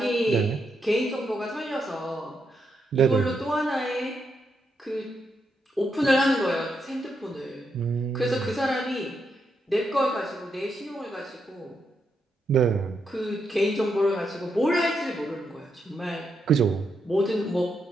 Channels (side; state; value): both; normal; correlation 0.81